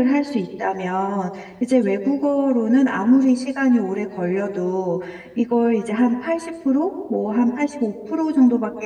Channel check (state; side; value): identical; both; correlation 1.00